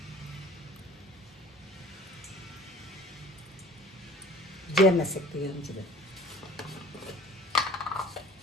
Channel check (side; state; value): both; normal; correlation 0.48